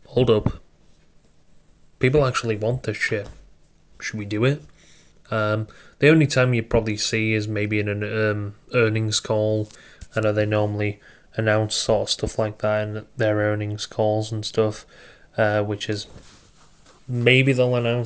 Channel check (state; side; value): identical; both; correlation 1.00